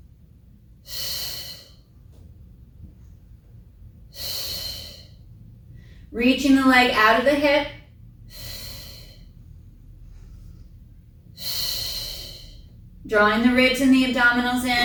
Reaching the leg out of the hip. Drawing the ribs and the abdominals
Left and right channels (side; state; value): both; identical; correlation 1.00